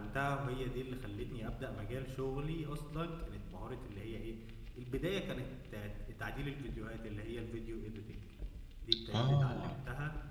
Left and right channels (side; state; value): both; identical; correlation 1.00